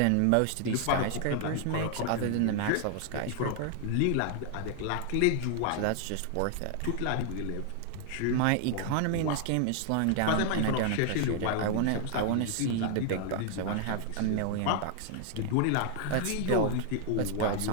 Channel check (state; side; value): different; both; correlation 0.00